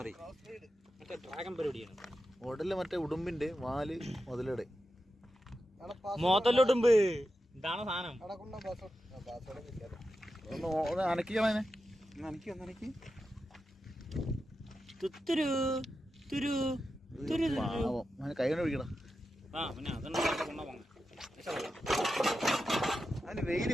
ഡ്രാഗൺ പരിപാടിയാണ്. ഉടല് മറ്റേ ഉടുമ്പിന്റെ, വാല് മുതലയുടെ. മോത്തല്ലുടുമ്പ് ഇതാണ് സാധനം. ഒന്ന് അനക്കിക്കളെ. കൈ കൊണ്ട് പിടിക്കണം. അതിന് വെയില്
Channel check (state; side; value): normal; both; correlation 0.90